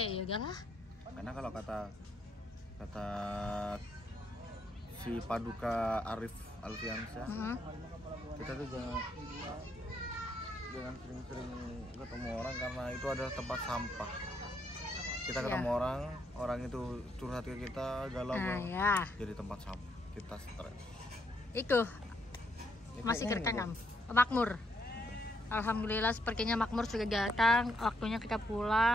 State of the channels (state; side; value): normal; both; correlation 0.75